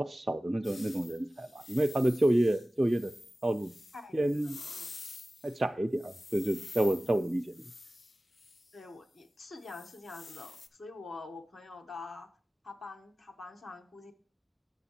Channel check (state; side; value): normal; both; correlation 0.96